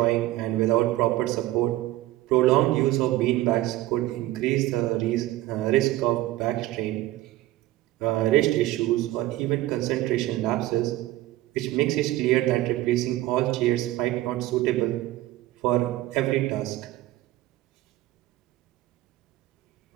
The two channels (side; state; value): left; quieter; 16.3 dB